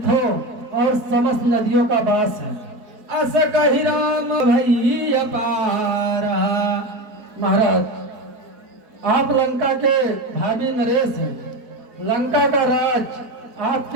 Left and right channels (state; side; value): late; left; 4.4 ms